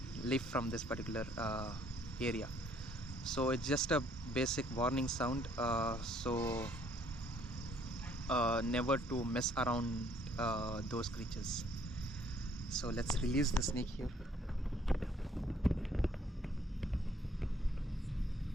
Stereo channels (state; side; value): normal; both; correlation 0.63